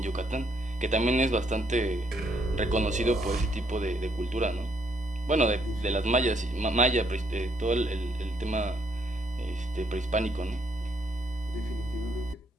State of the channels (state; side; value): normal; both; correlation 0.71